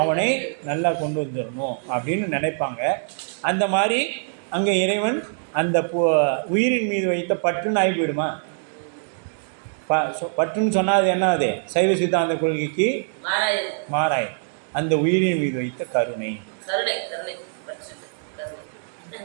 நல்லா கொண்டு வந்துடணும் அப்படின்னு நினைப்பாங்க. அந்த மாதிரி அங்கே இறைவன் அந்த உயிரின் மீது வைத்த பற்றுன்னு ஆகி போயிடுமா? பற்றுன்னு சொன்னால் அது என்ன? அது சைவ சித்தாந்த கொள்கைக்கு மாறாய். அந்த உயிரின் மீது வைத்த கருணை.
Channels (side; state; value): left; silent; digital silence